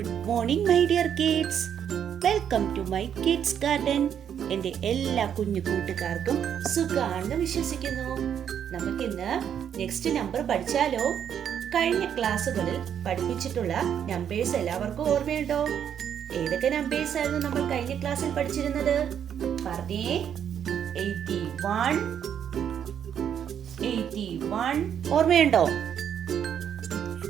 morning my dear kids. Welcome to my kids garden. എൻ്റെ എല്ലാ കുഞ്ഞു കൂട്ടുകാർക്കും സുഖാണെന്ന് വിശ്വസിക്കുന്നു. നമുക്കിന്ന് നെക്സ്റ്റ് നമ്പർ പഠിച്ചാലോ? കഴിഞ്ഞ ക്ലാസ്സുകളിൽ പഠിപ്പിച്ചിട്ടുള്ള നമ്പേഴ്സ് എല്ലാവർക്കും ഓർമ്മയുണ്ടോ? ഏതൊക്കെ നമ്പേഴ്സ് ആയിരുന്നു നമ്മൾ കഴിഞ്ഞ ക്ലാസ്സിൽ പഠിച്ചിരുന്നത്? പറഞ്ഞേ. 81 ഓർമ്മയുണ്ടോ?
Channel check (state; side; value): quieter; left; 8.8 dB